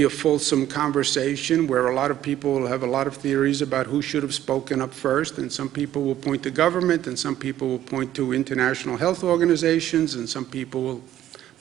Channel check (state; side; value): quieter; left; 12.5 dB